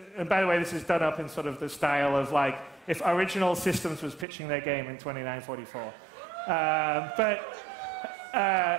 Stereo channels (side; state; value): left; drops out; at 4.2 s